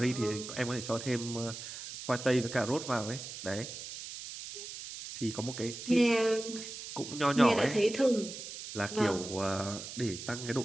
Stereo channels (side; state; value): right; noise; hiss, 10 dB below the sound